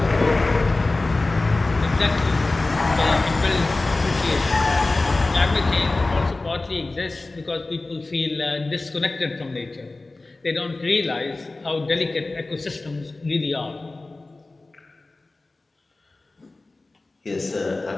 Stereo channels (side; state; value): right; quieter; 3.2 dB